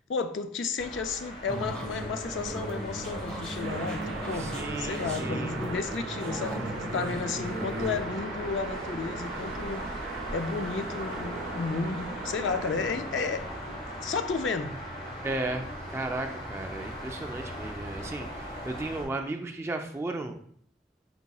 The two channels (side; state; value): both; normal; correlation 0.35